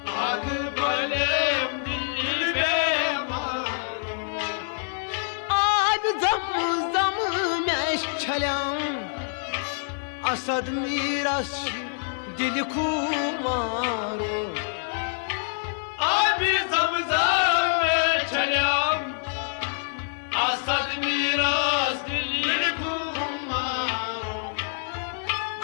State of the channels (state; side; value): silent; right; digital silence